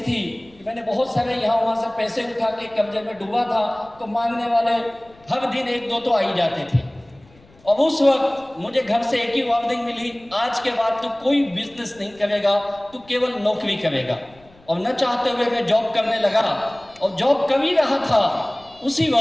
थी कि मैंने बहुत सारे यहाँ वहाँ से पैसे उठा के कर्जे में डूबा था, तो मांगने वाले हर दिन 1-2 तो आ ही जाते थे। और उस वक्त मुझे घर से एक ही वार्निंग मिली, आज के बाद तू कोई बिजनेस नहीं करेगा, तू केवल नौकरी करेगा। और न चाहते हुए मैं जॉब करने लगा, और जॉब कर ही रहा था। उसी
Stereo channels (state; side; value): noise; left; rumble, 28 dB below the sound